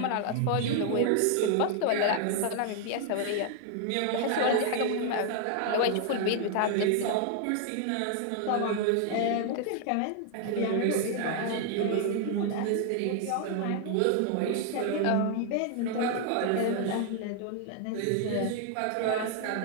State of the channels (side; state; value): both; different; correlation 0.00